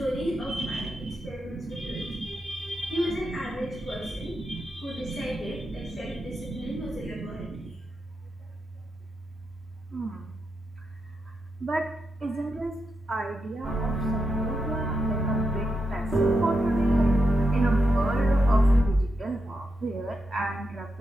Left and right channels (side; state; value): both; normal; correlation 0.85